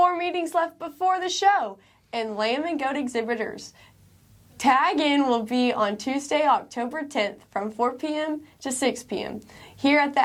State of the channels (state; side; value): identical; both; correlation 1.00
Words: meetings left before the show. And lamb and goat exhibitors, tag in will be on Tuesday, October 10th from 4 p.m. to 6 p.m. here at the